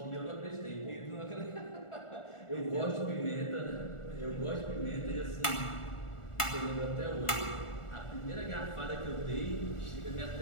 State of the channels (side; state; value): right; late; 1.4 ms